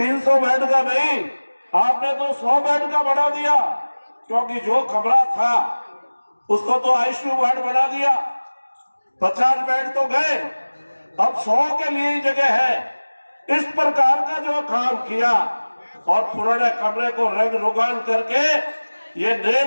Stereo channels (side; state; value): both; inverted; correlation -1.00